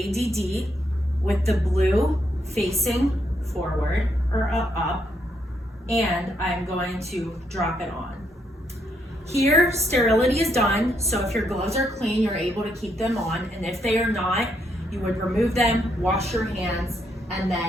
with the blue facing forward or up, and I'm going to drop it on. Here, sterility is done, so if your gloves are clean, you're able to keep them on, and if they are not, you would remove them, wash your hands, and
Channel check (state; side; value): normal; both; correlation 0.76